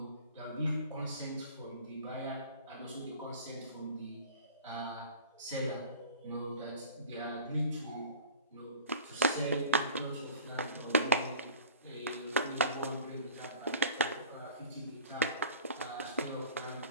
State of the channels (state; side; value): inverted; both; correlation -0.42